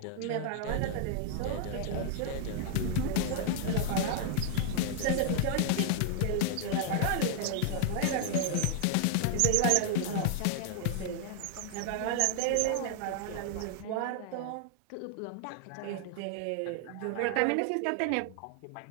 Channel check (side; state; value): both; different; correlation 0.00